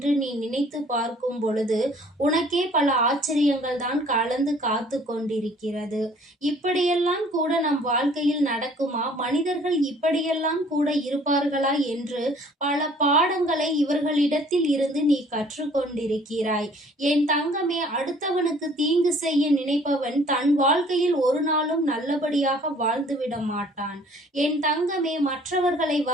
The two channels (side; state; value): both; normal; correlation 0.55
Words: நீ நினைத்து பார்க்கும் பொழுது உனக்கே பல ஆச்சரியங்கள் தான் கலந்து காத்து கொண்டிருக்கிறது. இப்படியெல்லாம் கூட நம் வாழ்க்கையில் நடக்குமா? மனிதர்கள் இப்படியெல்லாம் கூட இருப்பார்களா என்று பல பாடங்களை இவர்களிடத்தில் இருந்து நீ கற்றுக்கொண்டிருக்கிறாய். என் தங்கமே, அடுத்தவனுக்கு தீங்கு செய்ய நினைப்பவன் தன் வாழ்க்கையில் ஒரு நாளும் நல்லபடியாக வாழ்ந்துவிட மாட்டான். என் தங்கமே, மற்றவர்களை